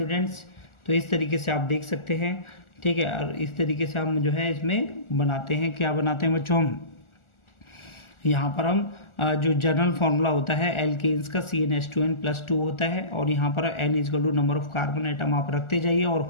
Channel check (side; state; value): right; late; 1.4 ms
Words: तो इस तरीके से आप देख सकते हैं। ठीक है, और इस तरीके से हम जो है इसमें बनाते हैं, क्या बनाते हैं बच्चों, हम यहाँ पर हम जो जनरल फार्मूला होता है एल्केन्स का CnH2n+2 होता है, और यहाँ पर n is equal to number of carbon atom आप रखते जाइए और